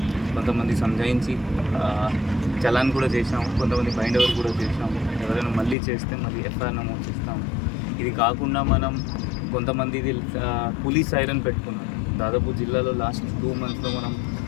కొంతమంది సంజాయించి చలాన్ కూడా చేసాము. కొంతమంది బైండ్ ఓవర్ కూడా చేసాము. ఎవరైనా మళ్ళీ చేస్తే మళ్ళీ ఎఫ్ఐఆర్ నమోదు చేస్తాము. ఇది కాకుండా మనం కొంతమంది పోలీస్ సైరన్ పెట్టుకున్నాం. దాదాపు జిల్లాలో లాస్ట్ 2 మంత్స్లో మనం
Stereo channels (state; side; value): drops out; right; at 5.8 s